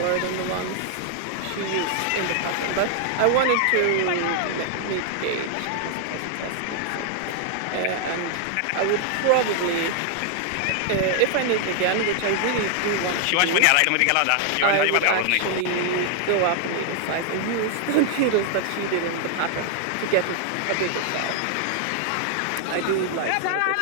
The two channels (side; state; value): both; different; correlation 0.00